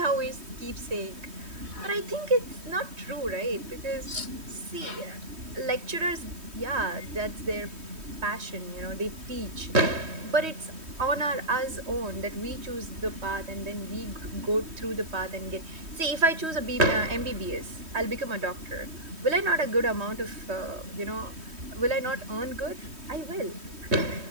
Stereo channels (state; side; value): late; left; 3.2 ms